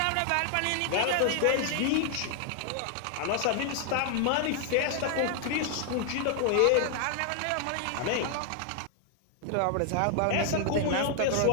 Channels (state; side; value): different; both; correlation 0.00